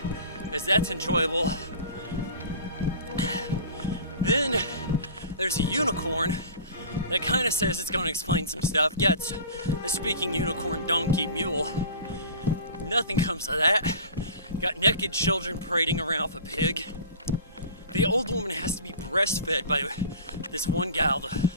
as that's enjoyable. Then there's a unicorn that kind of says it's going to explain some stuff. Yeah, it's a speaking unicorn, donkey, mule. Nothing comes of that. Got naked children parading around with a pig. The old woman has to be breastfed by this one gal,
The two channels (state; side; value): inverted; both; correlation -0.40